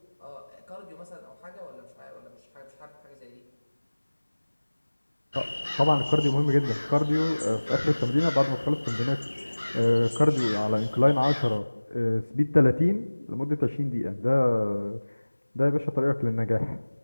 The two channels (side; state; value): both; inverted; correlation -1.00